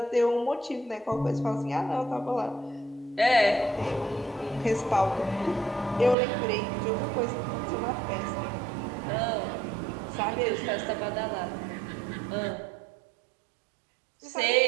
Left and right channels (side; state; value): left; drops out; at 6.2 s